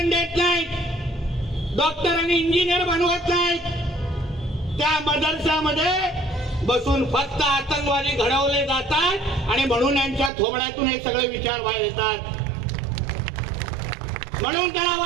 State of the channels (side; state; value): left; drops out; at 10.3 s